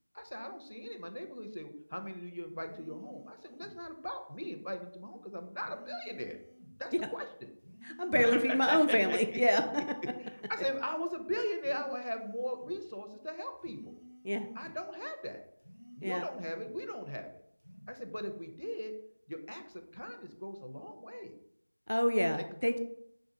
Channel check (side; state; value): both; inverted; correlation -1.00